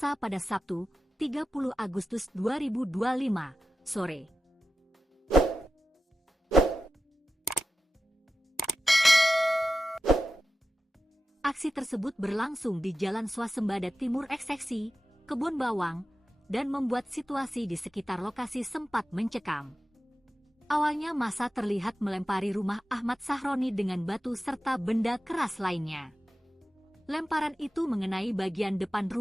pada Sabtu, 30 Agustus 2025, sore. Aksi tersebut berlangsung di Jalan Swasembada Timur Ekseksi, Kebun Bawang, dan membuat situasi di sekitar lokasi sempat mencekam. Awalnya massa terlihat melempari rumah Ahmad Sahroni dengan batu serta benda keras lainnya. Lemparan itu mengenai bagian depan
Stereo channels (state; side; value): normal; both; correlation 0.93